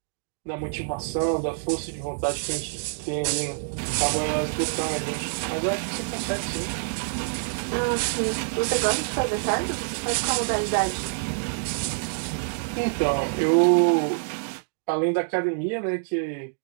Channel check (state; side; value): silent; left; digital silence